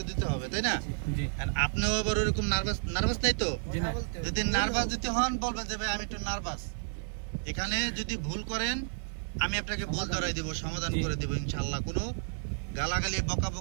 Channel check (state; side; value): silent; left; digital silence